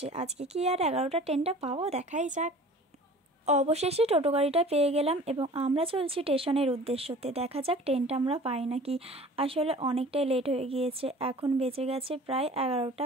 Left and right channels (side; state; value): both; normal; correlation 0.44